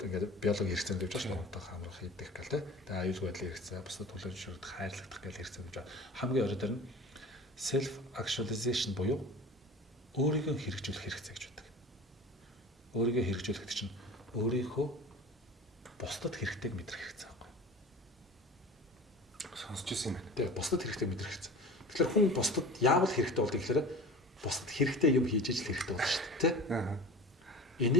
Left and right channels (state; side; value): normal; both; correlation 0.39